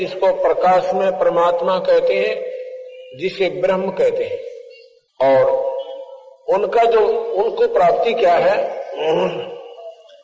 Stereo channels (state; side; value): identical; both; correlation 1.00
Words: प्रकाश में परमात्मा कहते हैं, जिसे ब्रह्म कहते हैं। और उनका जो, उनको प्राप्ति क्या है,